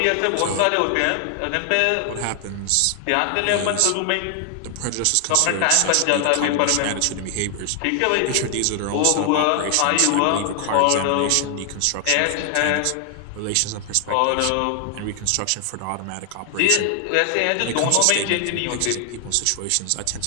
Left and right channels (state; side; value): different; both; correlation 0.00